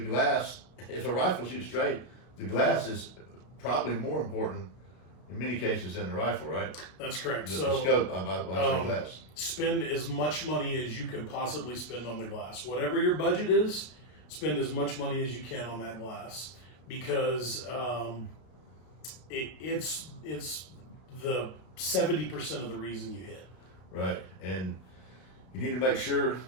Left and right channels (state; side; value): late; right; 32 ms